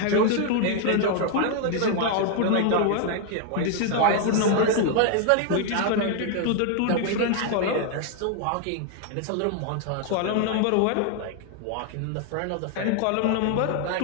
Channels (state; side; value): different; both; correlation 0.00